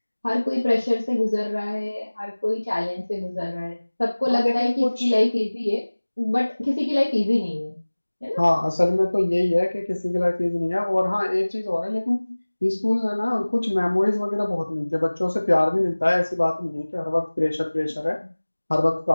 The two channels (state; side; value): inverted; both; correlation -1.00